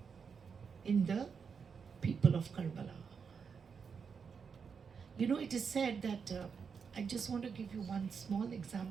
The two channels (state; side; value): quieter; left; 6.1 dB